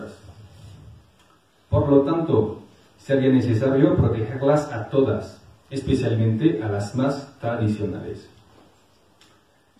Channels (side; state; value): both; identical; correlation 1.00